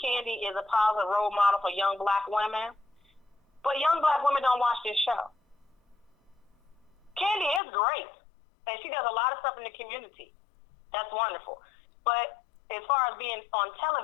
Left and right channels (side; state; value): right; drops out; at 7.6 s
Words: Kandi is a positive role model for young black women. But young black women don't watch this show. Kandi is great. And she does a lot of stuff in the community. That's wonderful. But as far as being on